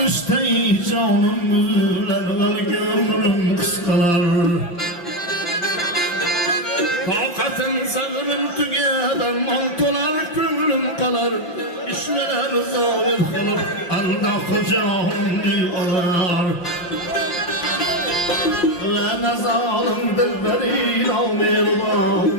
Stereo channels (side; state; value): right; late; 5.8 ms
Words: Üsteyi canım mühürler gönlüm kıskalar. Takatın sabrım tügeden mantolar kömrüm kalar. İşmeler zahir kalır anda kucağım bir alar. Ve ne zalim dilberin amirman